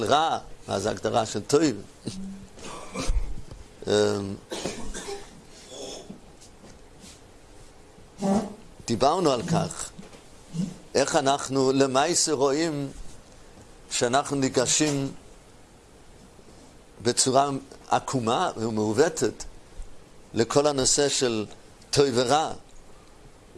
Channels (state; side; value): identical; both; correlation 1.00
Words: רע, מה זה הגדרה של טוב. דיברנו על כך, איך אנחנו למעשה רואים שאנחנו ניגשים בצורה עקומה ומעוותת לכל הנושא של טוב ורע.